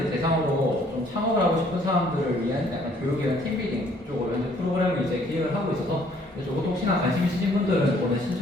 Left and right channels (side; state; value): both; normal; correlation 0.62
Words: 대상으로 좀 창업을 하고 싶은 사람들을 위한 약간 교육이나 팀빌딩 쪽으로 현재 프로그램을 이제 기획을 하고 있어서 이것도 혹시나 관심 있으신 분들은 오늘